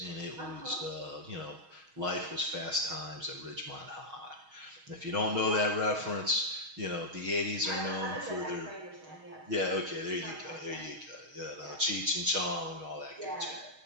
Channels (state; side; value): late; left; 6.3 ms